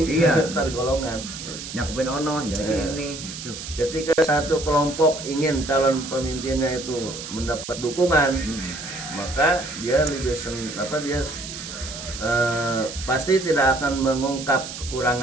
Iya. antar golongan. Nyakupin ono jadi kayak ini. Tuh. Ketika satu kelompok ingin calon pemimpinnya itu mendapat dukungan, maka dia lebih pasti tidak akan mengungkap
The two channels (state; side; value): noise; right; hiss, 10 dB below the sound